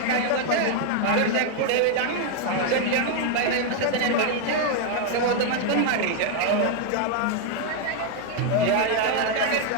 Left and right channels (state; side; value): different; both; correlation 0.00